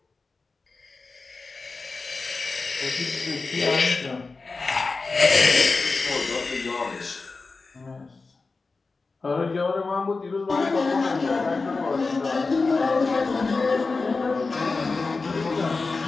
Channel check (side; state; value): right; quieter; 4.0 dB